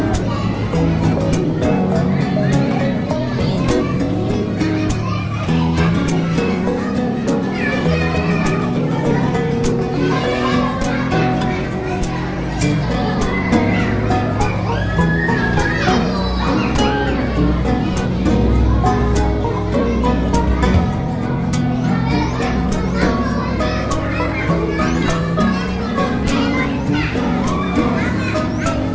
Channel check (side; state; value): both; identical; correlation 1.00